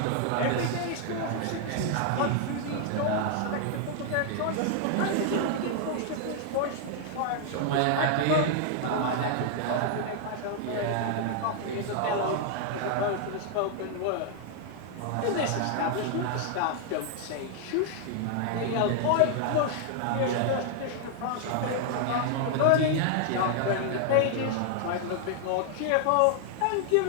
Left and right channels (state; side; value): different; both; correlation 0.00